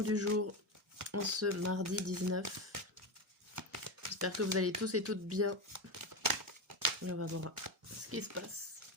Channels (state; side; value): normal; both; correlation 0.15